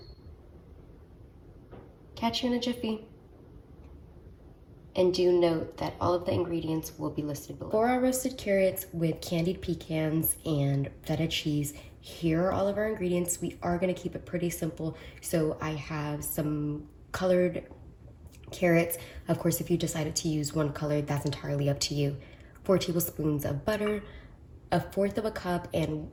Catch you in a jiffy. And do note that all of the ingredients will be listed below. For our roasted carrots with candied pecans and feta cheese, here are all of our ingredients. We are going to keep it pretty simple. So I have some colored carrots. Of course, if you decided to use one color, that's entirely up to you. 4 tablespoons of butter, 1/4 cup and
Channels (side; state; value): both; identical; correlation 1.00